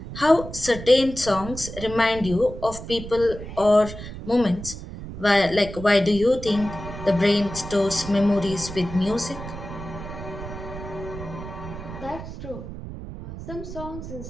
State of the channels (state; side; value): noise; right; rumble, 10 dB below the sound